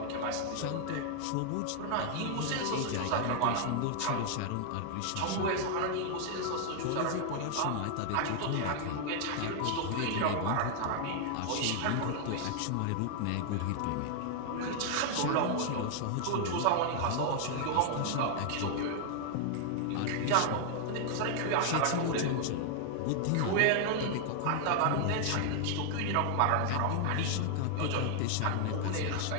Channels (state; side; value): different; both; correlation 0.00